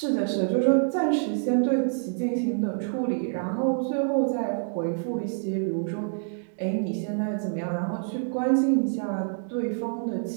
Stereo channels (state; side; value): silent; left; digital silence